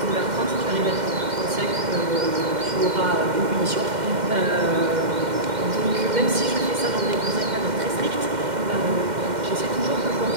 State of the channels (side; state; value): left; late; 2.1 ms